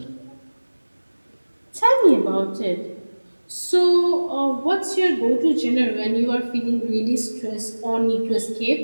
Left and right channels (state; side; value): inverted; both; correlation -1.00